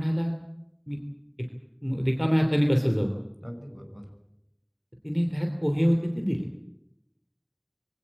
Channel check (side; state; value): both; identical; correlation 1.00